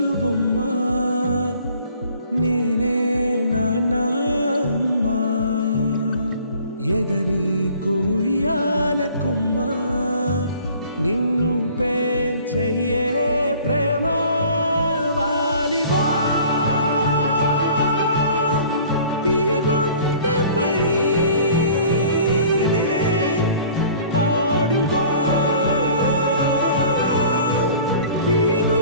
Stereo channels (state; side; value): inverted; both; correlation -0.50